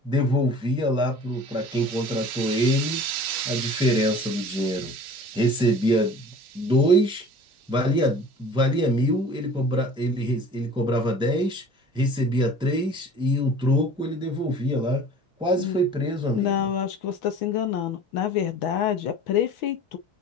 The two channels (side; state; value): both; normal; correlation 0.44